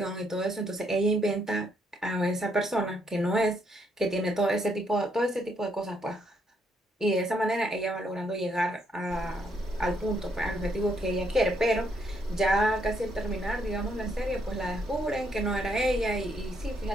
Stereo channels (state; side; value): normal; both; correlation 0.73